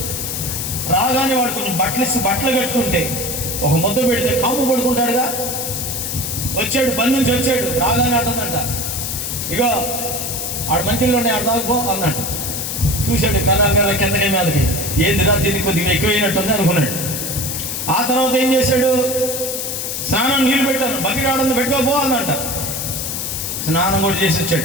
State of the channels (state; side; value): noise; left; hiss, 3 dB below the sound